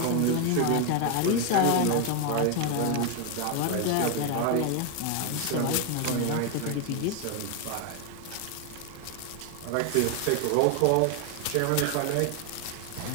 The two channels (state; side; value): different; both; correlation 0.01